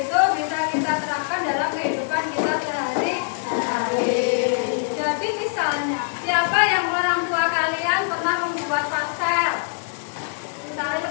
itu bisa kita terapkan dalam kehidupan kita sehari-hari. Jadi misalnya, siapa yang orang tua kalian pernah membuat parsel? Misalnya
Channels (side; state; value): right; silent; digital silence